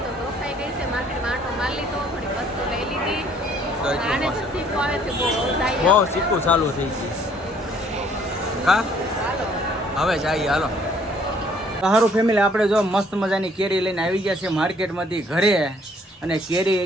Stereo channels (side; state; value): both; normal; correlation 0.61